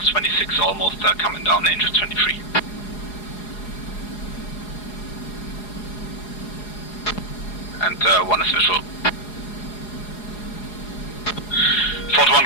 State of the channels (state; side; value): late; right; 4.8 ms